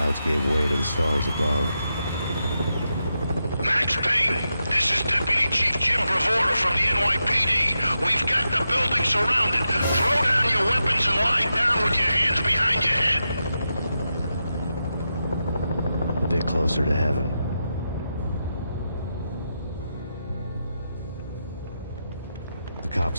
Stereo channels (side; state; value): both; inverted; correlation -0.87